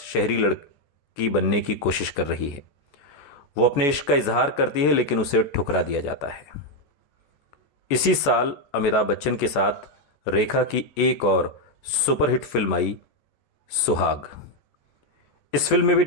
शहरी लड़की बनने की कोशिश कर रही है। वो अपने इश्क का इजहार करती है लेकिन उसे ठुकरा दिया जाता है। इसी साल अमिताभ बच्चन के साथ रेखा की एक और सुपरहिट फिल्म आई, सुहाग। इस फिल्म में भी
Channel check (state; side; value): late; right; 14 ms